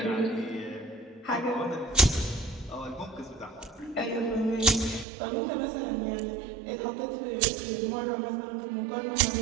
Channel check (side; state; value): left; drops out; at 5.1 s